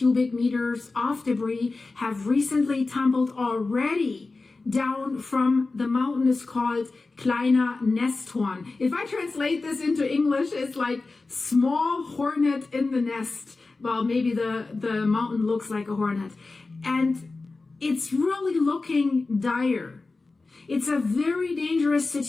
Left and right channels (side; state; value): right; quieter; 3.6 dB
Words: meters of debris have recently tumbled already down from the mountain is called Kleiner Nesthorn. If I translate this into English, it's like small hornet in the nest. Well, maybe the mountain looks like a hornet. And it's really looking dire. It's a very dangerous